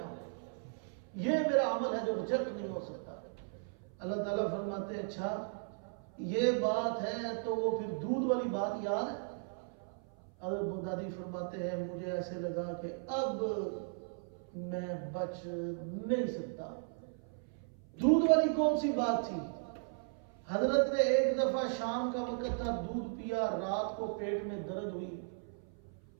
ہوں، یہ میرا عمل ہے جو ریجیکٹ نہیں ہو سکتا۔ اللہ تعالیٰ فرماتے ہیں اچھا یہ بات ہے تو وہ پھر دودھ والی بات یاد ہے؟ حضرت بغدادی فرماتے ہیں مجھے ایسے لگا کہ اب میں بچ نہیں سکتا۔ دودھ والی کون سی بات تھی؟ حضرت نے ایک دفعہ شام کا وقت تھا، دودھ پیا، رات کو پیٹ میں درد ہوئی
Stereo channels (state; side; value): silent; left; 54 dB below the other